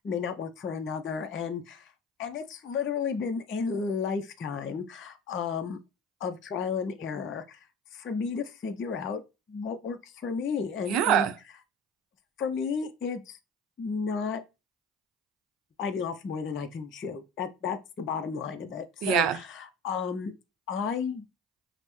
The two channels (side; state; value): both; normal; correlation 0.35